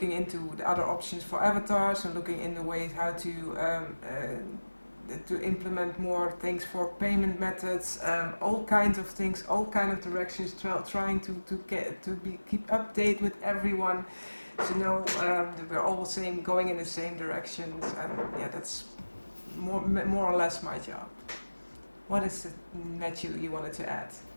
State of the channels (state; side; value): inverted; both; correlation -1.00